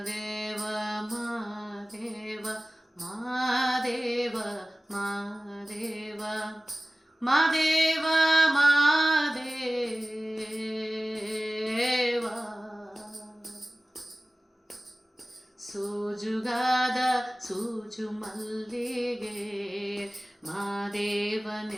ಮಾದೇವ ಮಾದೇವ ಮಾದೇವ ಮಾದೇವ ಮಾದೇವ ಸೋಜುಗಾದ ಸೂಜು ಮಲ್ಲಿಗೆ ಮಾದೇವ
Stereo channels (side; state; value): both; normal; correlation 0.97